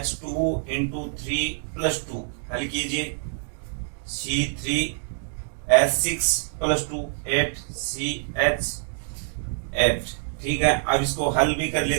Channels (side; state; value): left; silent; 61 dB below the other